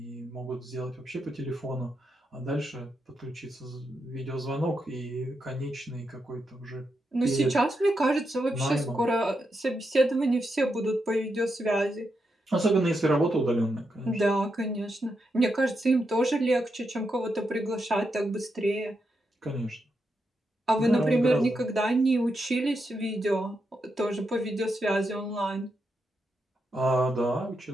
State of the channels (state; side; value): normal; both; correlation 0.84